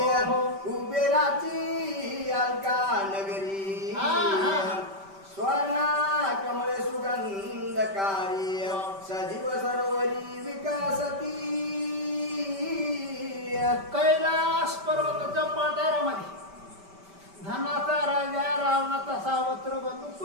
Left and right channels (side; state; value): left; late; 5.1 ms